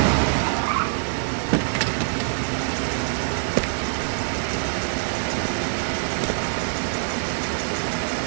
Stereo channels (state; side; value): silent; left; digital silence